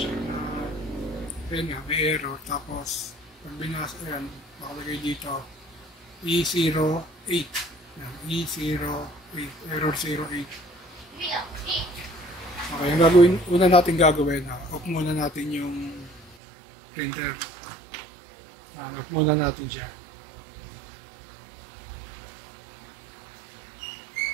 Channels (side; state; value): left; drops out; at 16.4 s